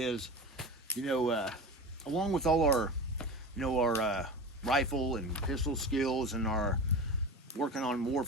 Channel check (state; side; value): normal; both; correlation 0.30